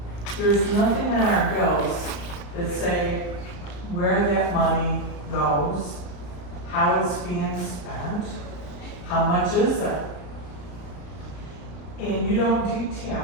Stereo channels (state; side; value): late; right; 34 ms